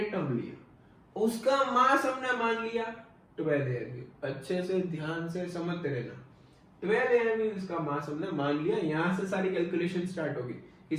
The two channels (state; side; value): identical; both; correlation 1.00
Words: लिया, उसका मास हमने मान लिया 12 AMU। अच्छे से ध्यान से समझते रहना, 12 AMU इसका मास हमने मान लिया। यहां से सारी कैलकुलेशन स्टार्ट होगी।